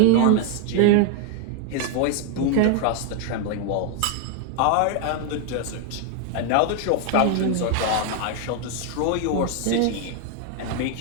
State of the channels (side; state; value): both; different; correlation 0.00